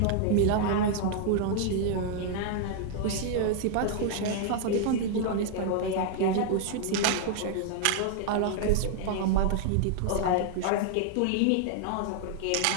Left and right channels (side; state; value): both; different; correlation 0.00